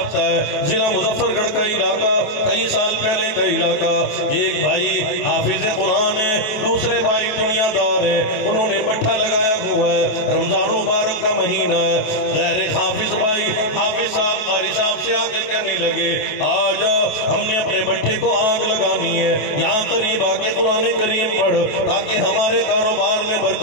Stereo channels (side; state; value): right; late; 28 ms